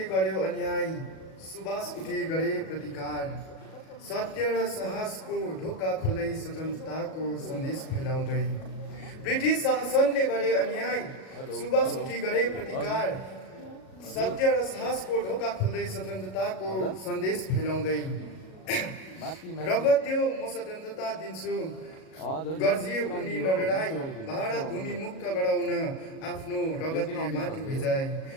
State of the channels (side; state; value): right; late; 37 ms